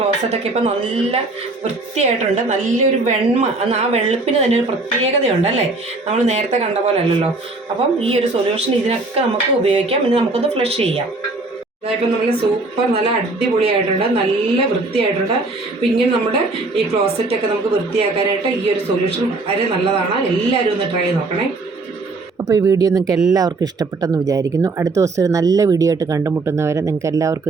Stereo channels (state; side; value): quieter; left; 3.3 dB